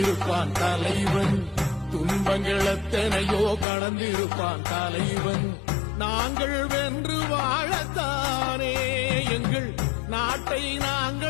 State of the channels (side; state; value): right; drops out; at 3.7 s